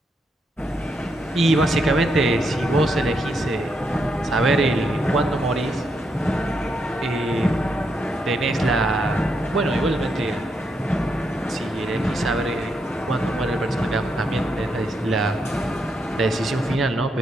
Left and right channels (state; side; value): normal; both; correlation 0.79